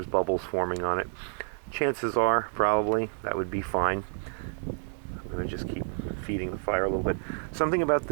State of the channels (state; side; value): silent; left; 59 dB below the other